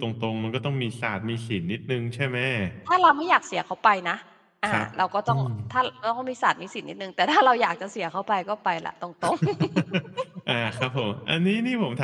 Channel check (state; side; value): identical; both; correlation 1.00